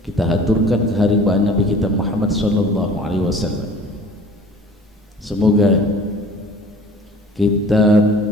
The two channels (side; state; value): both; normal; correlation 0.47